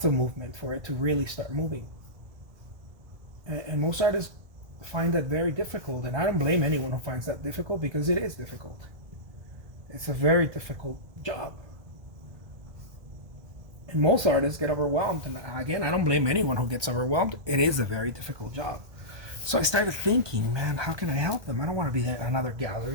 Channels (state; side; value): late; left; 1.2 ms